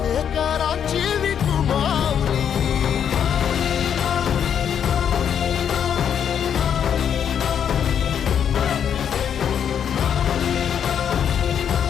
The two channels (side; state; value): right; quieter; 8.4 dB